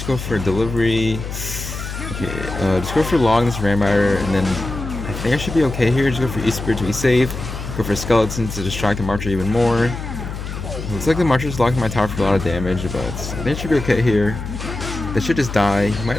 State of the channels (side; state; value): left; noise; hum, 7 dB below the sound